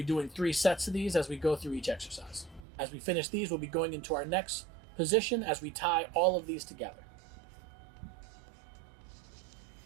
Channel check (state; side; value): drops out; left; at 2.7 s